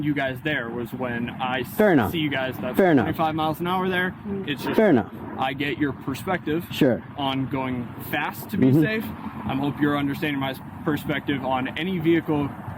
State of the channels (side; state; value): both; identical; correlation 1.00